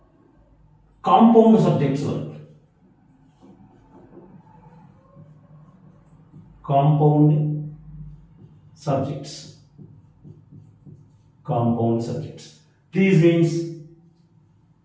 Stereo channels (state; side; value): identical; both; correlation 1.00